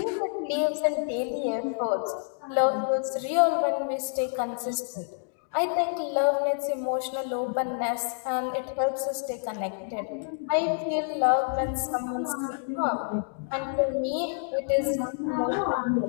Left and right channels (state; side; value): silent; right; digital silence